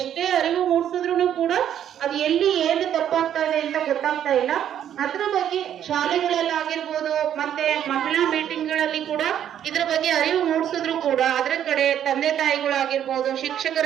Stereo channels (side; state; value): left; quieter; 10.1 dB